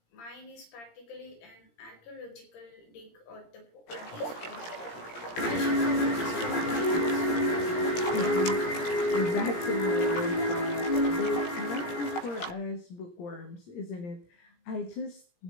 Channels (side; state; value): right; late; 17 ms